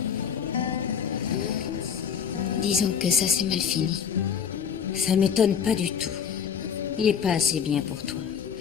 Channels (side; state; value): right; quieter; 7.4 dB